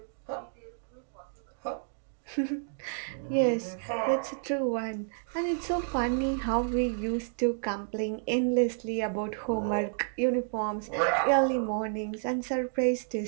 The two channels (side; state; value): left; silent; digital silence